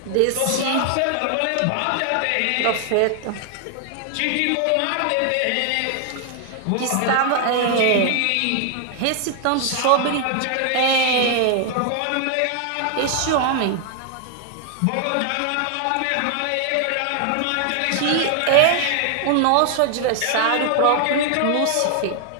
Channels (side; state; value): both; different; correlation 0.00